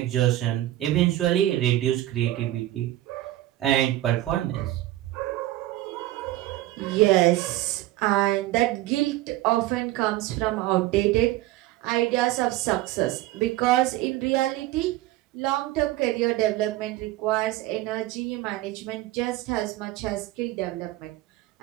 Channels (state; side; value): quieter; left; 15.6 dB